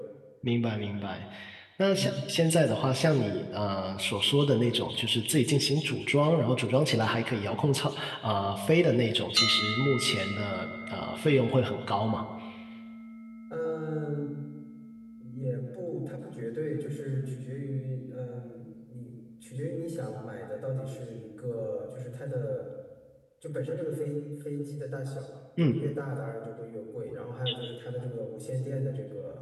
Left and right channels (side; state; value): both; identical; correlation 1.00